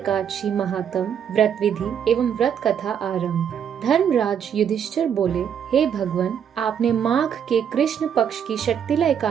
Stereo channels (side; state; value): left; quieter; 8.3 dB